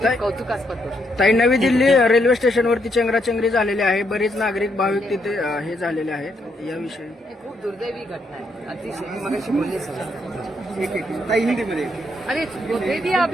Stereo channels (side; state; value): both; normal; correlation 0.76